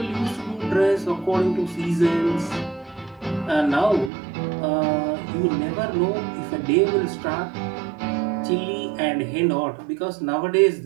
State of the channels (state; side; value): drops out; left; at 4.1 s